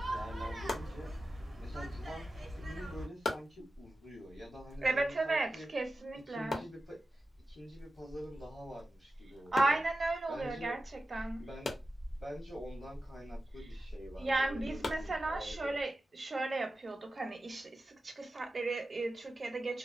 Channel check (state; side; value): normal; both; correlation 0.93